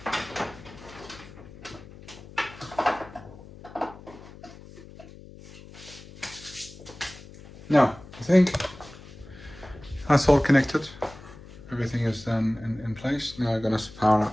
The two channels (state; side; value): noise; left; hum, 18 dB below the sound